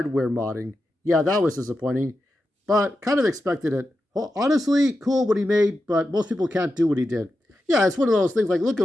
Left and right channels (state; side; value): normal; both; correlation 0.89